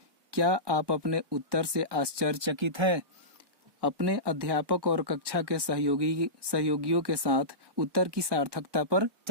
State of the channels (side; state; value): left; late; 1.2 ms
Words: क्या आप अपने उत्तर से आश्चर्यचकित हैं? अपने अध्यापक और कक्षा के सहयोगियों के साथ उत्तर की सार्थकता पर